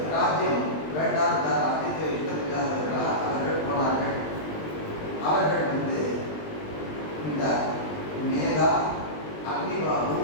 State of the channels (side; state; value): right; late; 20 ms